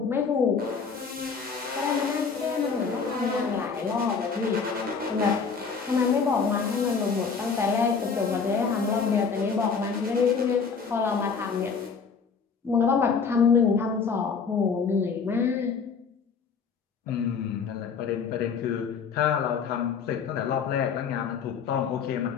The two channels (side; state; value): right; quieter; 5.6 dB